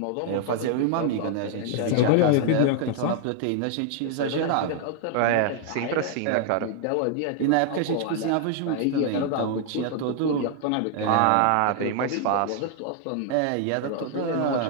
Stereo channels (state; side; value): different; both; correlation 0.00